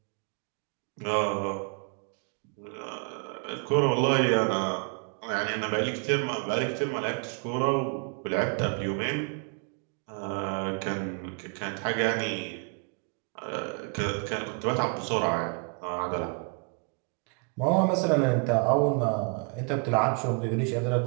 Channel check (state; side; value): quieter; left; 38.5 dB